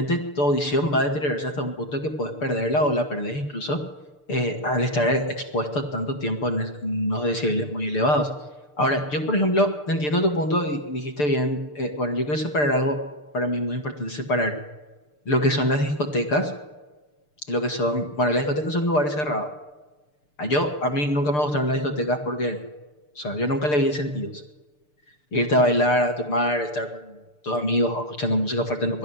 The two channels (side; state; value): right; late; 6.7 ms